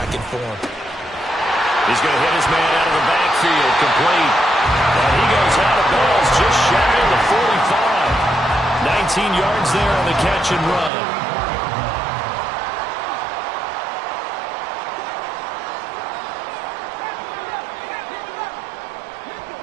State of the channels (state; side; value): drops out; left; at 10.9 s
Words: in form. He's going to hit his man out of the backfield, complete. And he goes out of bounds just shy of the 45. 19 yards there on the catch and run.